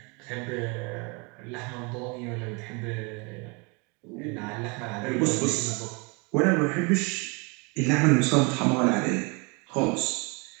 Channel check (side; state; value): left; quieter; 30.6 dB